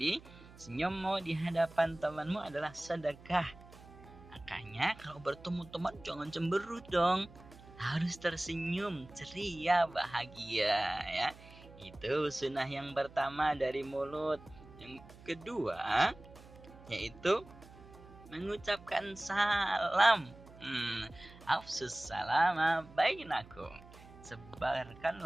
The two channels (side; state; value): right; noise; hum, 20 dB below the sound